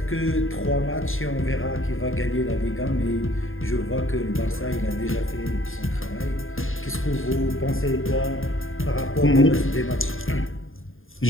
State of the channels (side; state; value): right; late; 0.59 ms